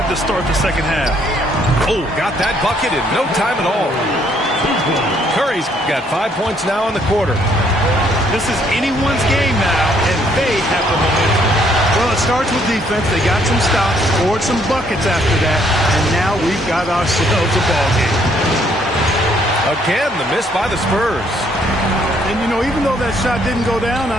to start the second half. Oh, got that bucket in no time at all. Curry's got 5 points now in the quarter. This is anyone's game now, and they have the momentum. Well, it starts with defense. They got some stops, scored some buckets after that, and now we've got ourselves a ball game. Again, the miss by the Spurs. And, you know, even though that shot didn't go down,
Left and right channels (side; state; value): both; normal; correlation 0.67